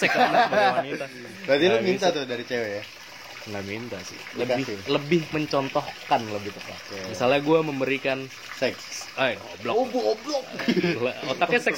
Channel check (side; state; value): both; identical; correlation 1.00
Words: kan sebagai wanita. Berarti lu minta tuh dari cewek ya? Nggak minta sih. Lebih mencontohkan lebih tepat. Misalnya gue memberikan seks. Goblok. Oh, goblok. Otaknya